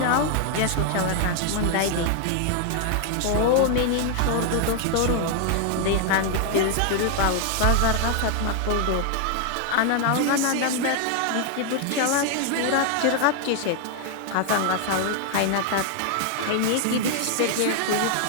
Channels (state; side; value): different; both; correlation 0.00